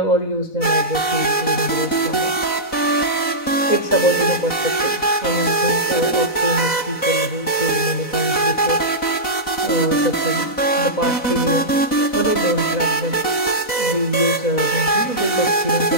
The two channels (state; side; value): late; right; 4.0 ms